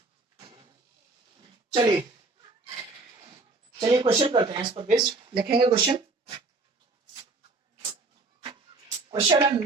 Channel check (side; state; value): left; quieter; 3.5 dB